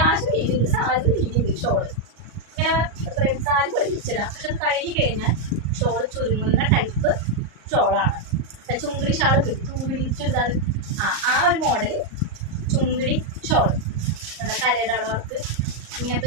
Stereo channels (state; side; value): late; left; 38 ms